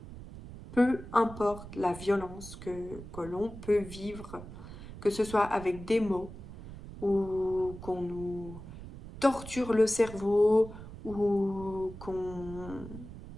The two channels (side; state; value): right; noise; rumble, 13 dB below the sound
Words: peu importe la violence que l'on peut vivre, que ce soit avec des mots ou qu'on nous torture le cerveau ou qu'on